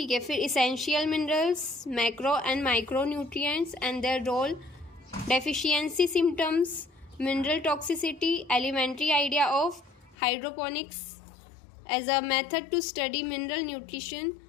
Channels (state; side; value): drops out; right; at 10.2 s